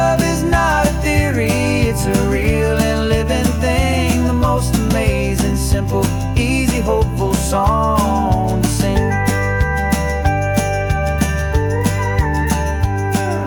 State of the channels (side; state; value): both; identical; correlation 1.00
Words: is not a theory, it's a real and living thing, the most amazing, simple, easy, hopeful song to sing.